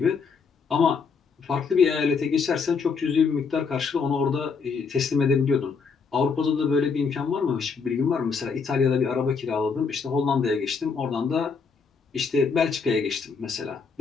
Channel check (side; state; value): right; quieter; 5.3 dB